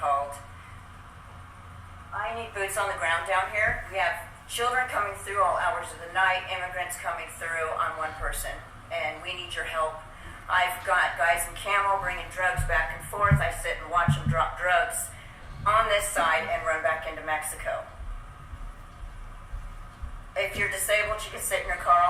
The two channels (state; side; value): identical; both; correlation 1.00